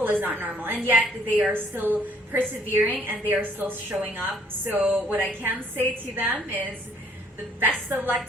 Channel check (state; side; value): normal; both; correlation 0.62